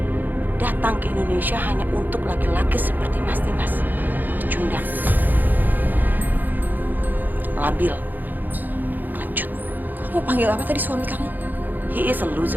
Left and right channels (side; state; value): left; late; 0.086 ms